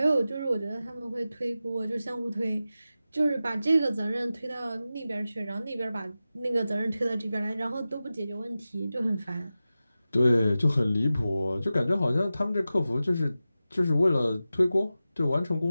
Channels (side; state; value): both; inverted; correlation -0.94